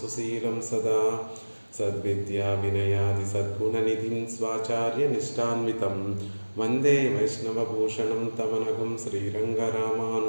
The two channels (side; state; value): both; inverted; correlation -1.00